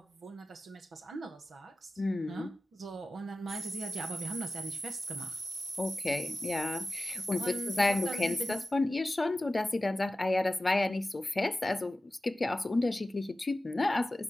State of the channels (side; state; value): both; normal; correlation 0.95